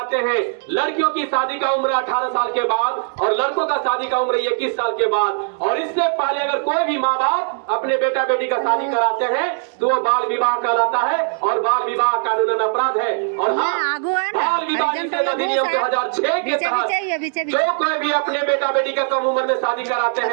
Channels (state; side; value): silent; left; 64 dB below the other